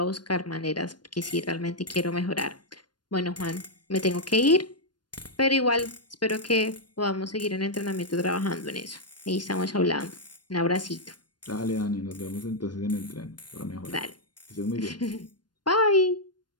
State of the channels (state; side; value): late; right; 0.71 ms